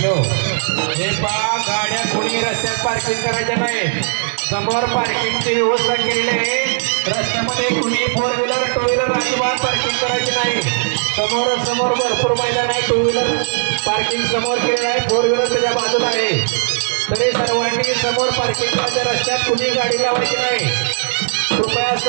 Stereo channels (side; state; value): left; silent; 68 dB below the other